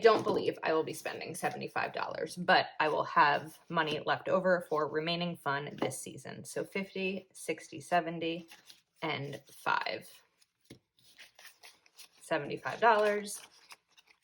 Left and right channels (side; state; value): both; identical; correlation 1.00